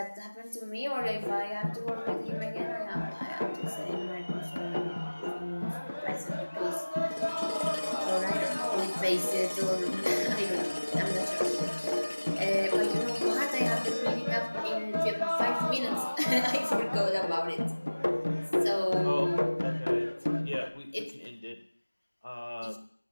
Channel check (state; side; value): inverted; both; correlation -1.00